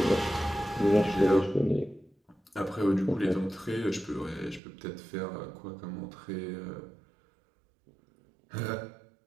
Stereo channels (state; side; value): drops out; left; at 4.6 s